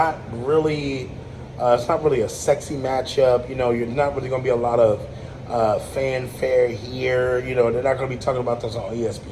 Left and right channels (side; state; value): both; identical; correlation 1.00